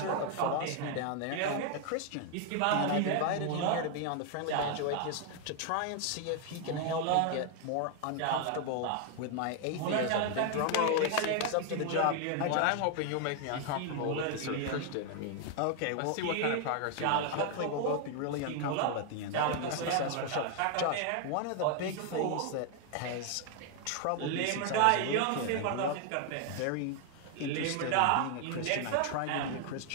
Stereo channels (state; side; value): different; both; correlation 0.00